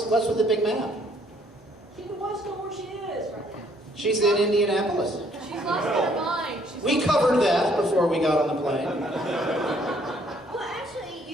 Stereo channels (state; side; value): normal; both; correlation 0.64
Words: with the big map? She wants to know where she is right now. She's in Indianapolis. She's lost her mind. We covered that before we got on the plane. Well, actually,